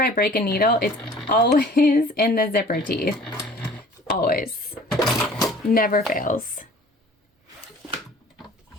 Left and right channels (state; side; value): normal; both; correlation 0.48